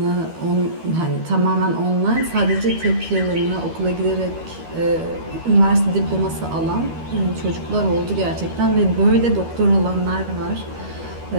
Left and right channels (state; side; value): late; left; 13 ms